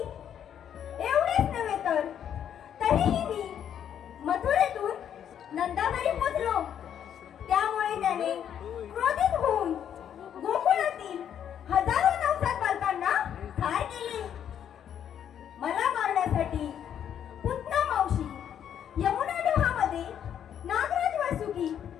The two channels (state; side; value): quieter; right; 9.3 dB